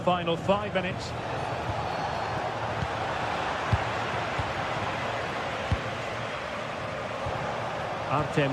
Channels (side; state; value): both; identical; correlation 1.00